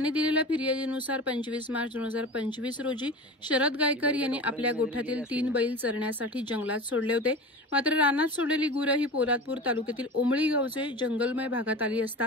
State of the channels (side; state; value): both; normal; correlation 0.32